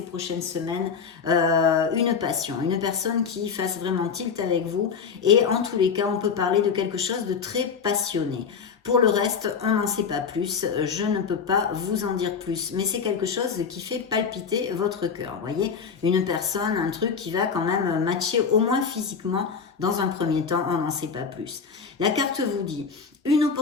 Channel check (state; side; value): quieter; right; 6.1 dB